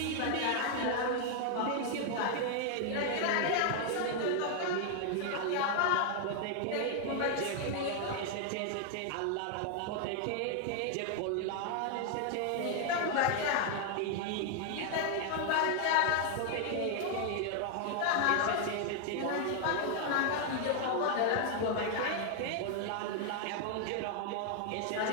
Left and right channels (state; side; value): different; both; correlation 0.00